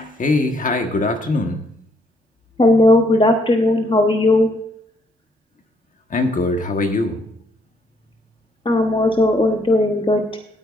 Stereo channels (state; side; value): normal; both; correlation 0.69